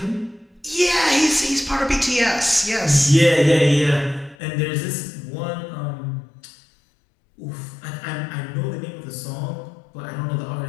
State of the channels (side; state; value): right; drops out; at 4.4 s